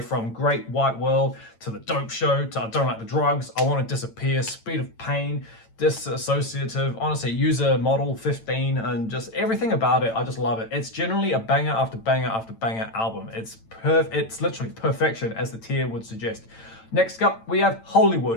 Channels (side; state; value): right; late; 8.9 ms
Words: from Great White World to The Dope Show to I Don't Like the Drugs, I Want to Disappear, Speed of Pain, Disassociative, honestly, User Model 15, and just everything about it. I just love it. It's generally a banger after banger after banger album. It's literally perfection, as the tier would suggest. Next up, we have